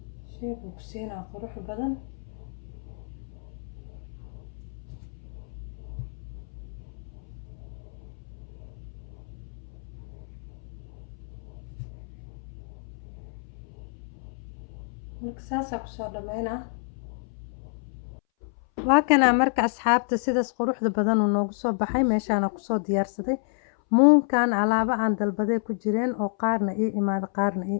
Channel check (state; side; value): silent; right; 59 dB below the other